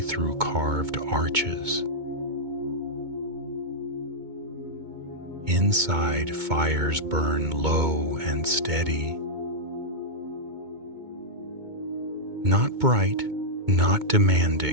carved arches. Inside, fires burn low and steady. Not bright, not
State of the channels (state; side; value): late; left; 2.2 ms